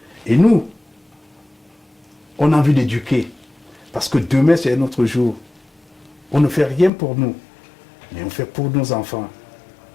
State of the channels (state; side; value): drops out; right; at 6.9 s